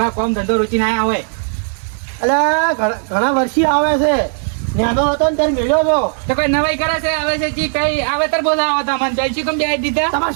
કોમ ધંધો રૂચીને આયા હોય એટલે ઘણા વર્ષી આવે છે નાનો હતો ને ત્યારે મળ્યો હતો તો કોઈ નવાઈ કરે છે આવે છે જી કઈ આવે તર બોલાવો તો અમને પહેલથી કેમ બે દીધા તમારો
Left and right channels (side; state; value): left; silent; 63 dB below the other